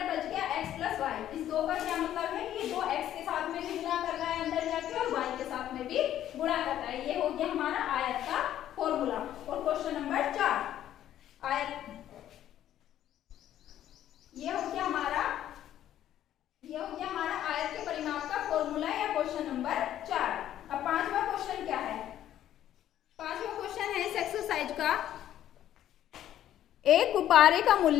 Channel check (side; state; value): right; quieter; 11.7 dB